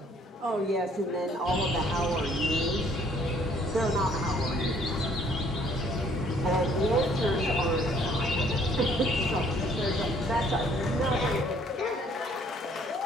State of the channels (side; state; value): both; normal; correlation 0.61